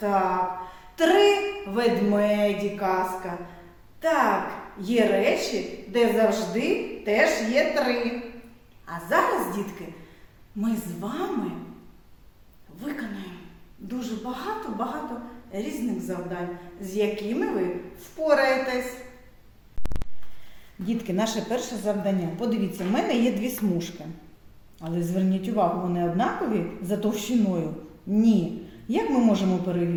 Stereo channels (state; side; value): identical; both; correlation 1.00